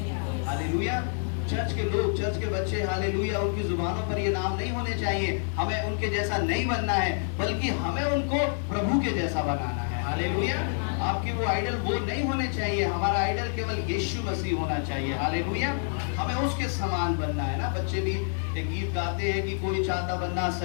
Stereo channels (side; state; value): right; silent; digital silence